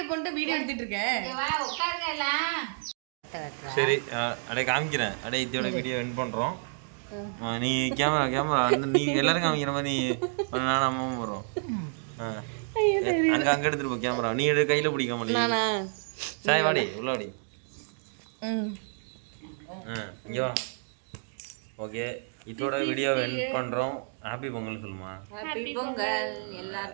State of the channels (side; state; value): left; silent; 58 dB below the other